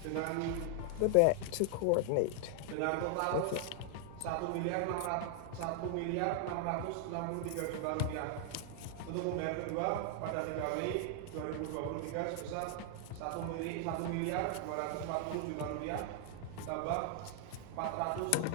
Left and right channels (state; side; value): different; both; correlation 0.00